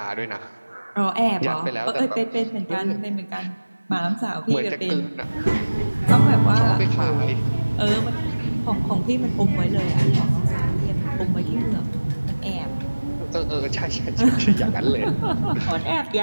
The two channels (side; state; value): both; inverted; correlation -1.00